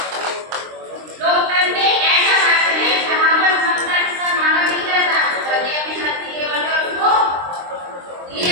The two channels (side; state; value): left; late; 23 ms